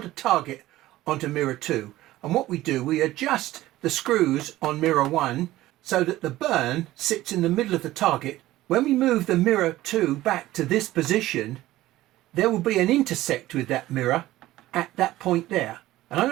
target onto mirror 2. And what we do, we adjust the screws on mirror 1 so that the burn sits in the middle of the target. When we move the mirror 2 back to this position, there will be an intersect with that mirror, at that point there. And I'm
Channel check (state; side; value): quieter; left; 16.1 dB